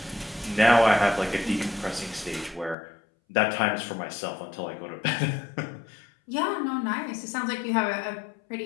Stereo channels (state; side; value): drops out; right; at 2.8 s